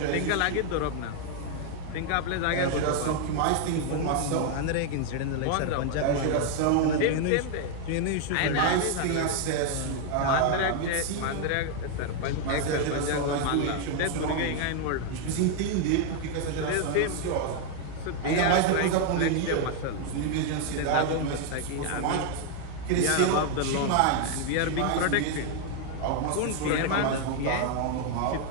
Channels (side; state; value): both; different; correlation 0.00